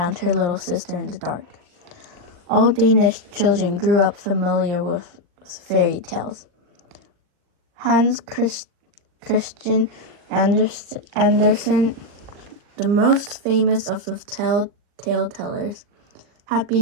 her little sister in the dark. All Danish children grew up familiar with fairy tales. Hans Christian Andersen, the most famous of the tale tellers, had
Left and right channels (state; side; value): late; left; 39 ms